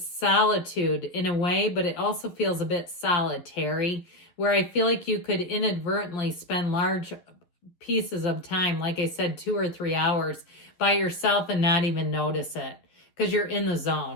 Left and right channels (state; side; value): late; right; 11 ms